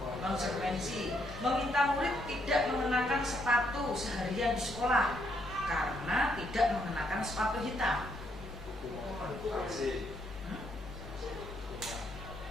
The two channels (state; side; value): normal; both; correlation 0.74